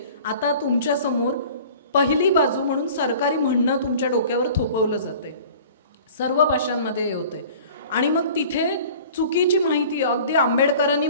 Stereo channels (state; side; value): inverted; both; correlation -0.45